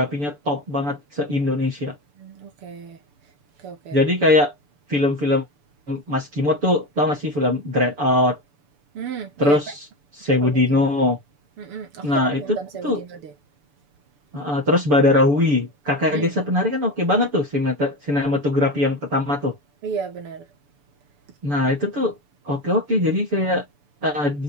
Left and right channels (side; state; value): left; late; 6.9 ms